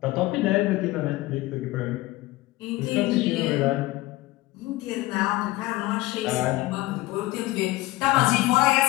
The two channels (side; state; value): right; quieter; 18.7 dB